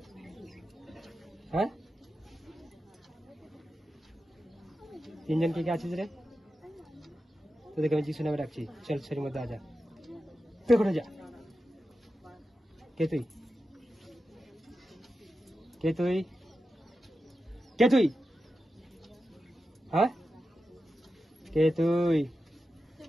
হ্যাঁ, তিনজন কে কে আছিস রে? তোদেরকে আমি যিশু নামে ডাকছি, চল শরীর মধ্যে আজা, পেছনে যা। কে তুই? কে তুই? কে তুই? হ্যাঁ, কে তুই?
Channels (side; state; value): both; normal; correlation 0.91